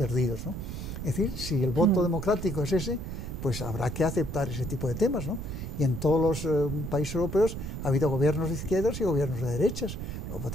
¿no? Es decir, si el voto democrático es ese, pues habrá que aceptar ese tipo de temas, ¿no? Y en todos los países europeos ha habido gobiernos de izquierdas y gobiernos de derechas. Por lo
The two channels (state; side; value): noise; right; rumble, 6 dB below the sound